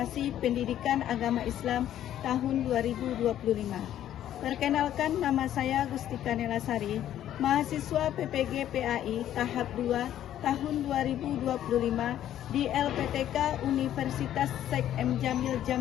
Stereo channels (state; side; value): quieter; right; 11.6 dB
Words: Pendidikan Agama Islam tahun 2025. Perkenalkan, nama saya Gustika Nelasari, mahasiswa PPG PAI tahap 2 tahun 2025 di LPTK Universitas Syekh M. Jamil